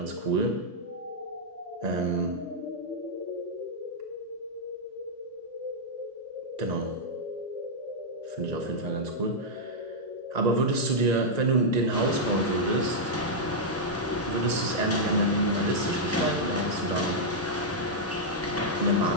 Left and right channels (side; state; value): both; normal; correlation -0.06